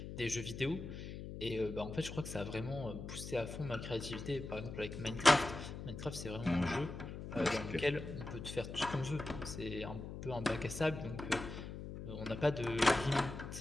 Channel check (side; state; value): left; noise; hum, 8 dB below the sound